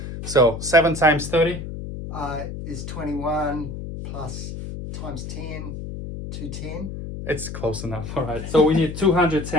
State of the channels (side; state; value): left; noise; hum, 8 dB below the sound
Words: So 7 times 30 is 21 plus times 10, 210. It's close enough. All right. So we need